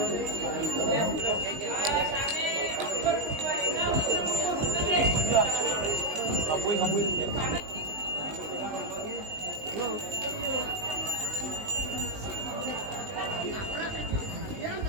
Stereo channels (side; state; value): left; late; 19 ms